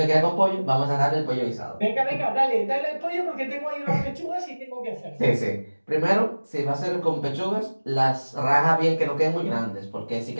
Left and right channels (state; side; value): inverted; both; correlation -1.00